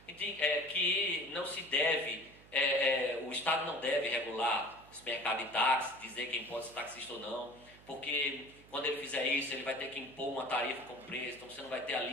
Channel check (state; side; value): noise; right; hum, 23 dB below the sound